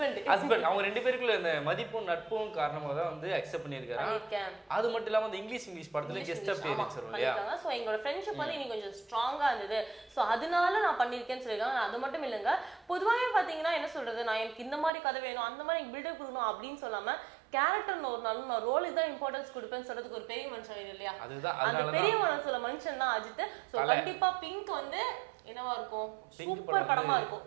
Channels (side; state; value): left; drops out; at 14.9 s